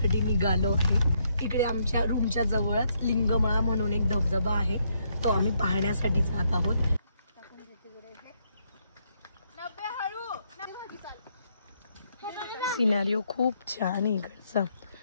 निघालो आहे। इकडे आमच्या रूमच्या जवळच लिंगमळा म्हणून एक धबधबा आहे, तो आम्ही पाहण्यासाठी जात आहोत। सिनेरिओ खूप छान आहे इकडचा।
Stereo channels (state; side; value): inverted; both; correlation -0.74